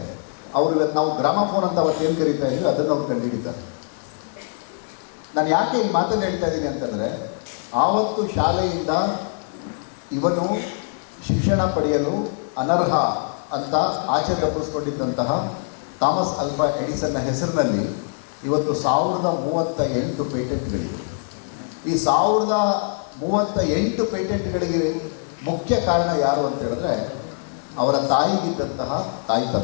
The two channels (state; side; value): silent; right; 64 dB below the other